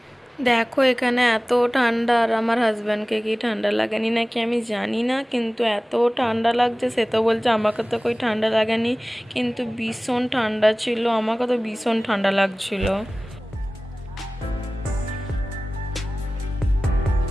দেখো এখানে এত ঠান্ডা, আর আমার হাজব্যান্ডকে কি ঠান্ডা লাগেনি নাকি আমি জানি না, কিন্তু এত ঠান্ডা লাগছে। সে তো বলছে আমাকে তো কই ঠান্ডা লাগেনি, কিন্তু ভীষণ ঠান্ডা ছিল, আমাকে তো ভীষণ ঠান্ডা লাগছিল।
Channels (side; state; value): both; normal; correlation 0.98